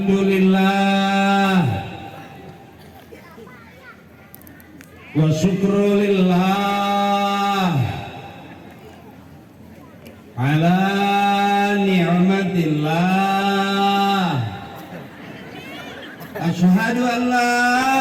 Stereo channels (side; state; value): both; identical; correlation 1.00